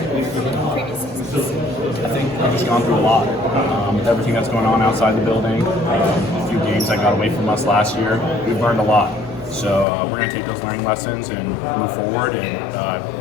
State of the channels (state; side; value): drops out; right; at 9.9 s